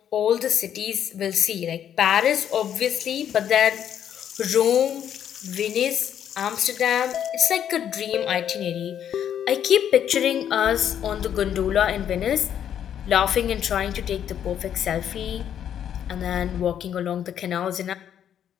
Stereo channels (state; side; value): quieter; right; 9.5 dB